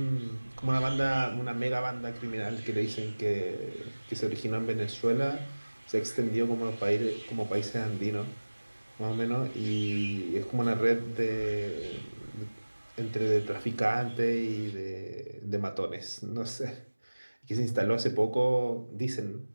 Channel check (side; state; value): both; inverted; correlation -1.00